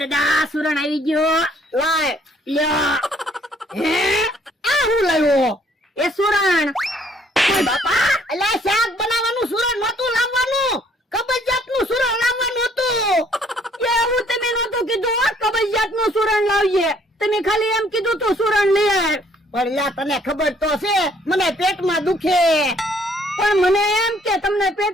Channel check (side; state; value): both; normal; correlation 0.63